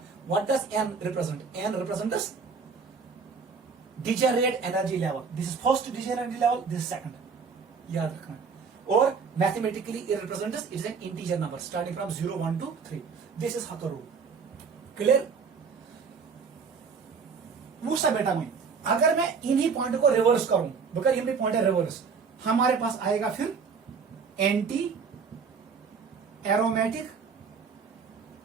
what does n represent? n represents degenerate energy level. This is first degenerate level, this second. याद रखना। और mathematically it represents, it is an integer number starting from 0 1 2 3। This is Huckel rule. Clear? पूछा बेटा मैं, अगर मैं इन्हीं पॉइंट को रिवर्स करूं, बकर इन्हीं पॉइंट है रिवर्स, हमारे पास आएगा फिर एंटी एरोमेटिक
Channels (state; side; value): quieter; left; 5.5 dB